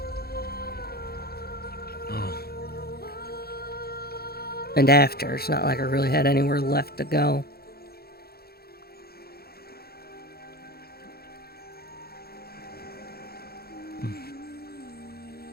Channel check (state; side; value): late; right; 0.45 ms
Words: Oh. And after, it's not like I really had anywhere left to go.